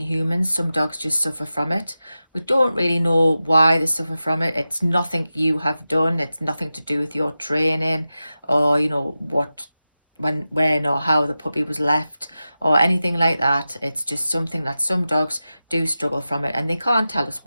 humans. Some dogs just suffer from it. We don't really know why they suffer from it. It's nothing you have done. It's nothing to do with your training or, when or how the puppy was left or anything like that. It's just something that some dogs do struggle from it, and they can't tell us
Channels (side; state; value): both; inverted; correlation -0.93